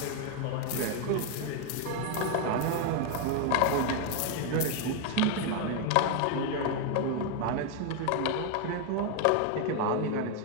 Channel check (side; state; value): both; different; correlation 0.01